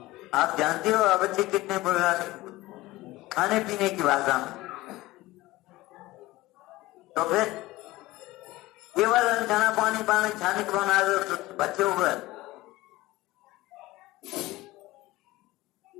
आप जानते हो अवश्य कितने बुराने खाने पीने की भाषा में। तो फिर केवल अनछना पानी पानी छाने के बना दो तो बच्चे हुए।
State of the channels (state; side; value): quieter; right; 18.7 dB